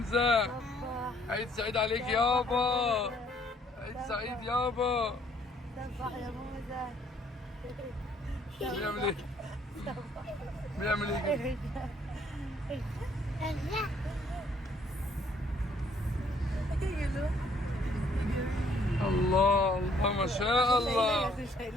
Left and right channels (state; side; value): normal; both; correlation 0.64